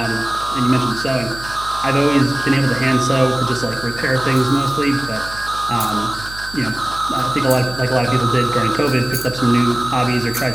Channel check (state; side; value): noise; right; hum, 15 dB below the sound